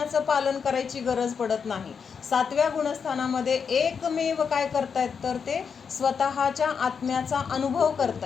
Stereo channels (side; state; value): right; quieter; 6.3 dB